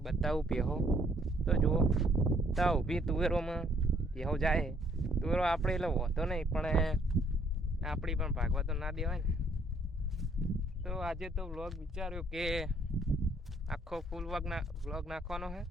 બતાવું ભેહો તો જુઓ, તા ઊભી તુવેરોમાં ભેહો જાય। તુવેરો આપણે એટલે હોતો નહીં, પણ આપણી પણ ભાગવા તો ના દેવાય ને। તો આજે તો વ્લોગ વિચાર્યો કે આખો ફૂલ વ્લોગ નાખવાનો છે,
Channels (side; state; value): both; normal; correlation 0.65